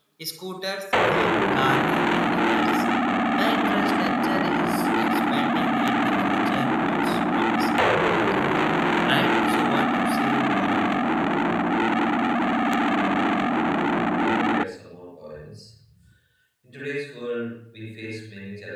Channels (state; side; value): identical; both; correlation 1.00